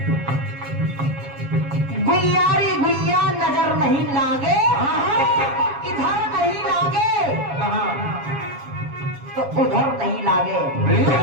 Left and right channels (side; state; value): left; late; 7.3 ms